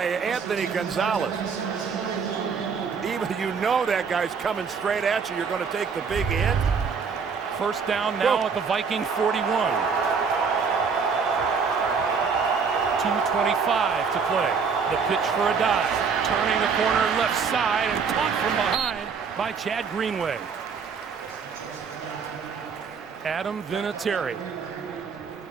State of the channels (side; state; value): left; quieter; 5.7 dB